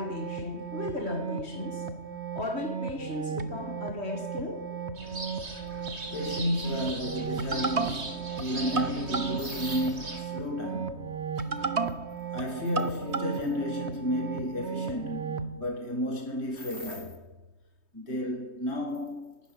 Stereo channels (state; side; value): late; left; 3.2 ms